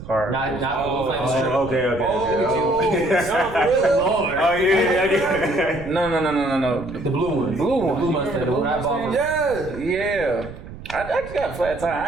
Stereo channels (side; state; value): right; noise; rumble, 14 dB below the sound